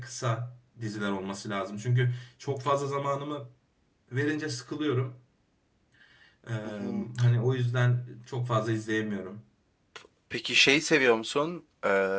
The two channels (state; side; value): identical; both; correlation 1.00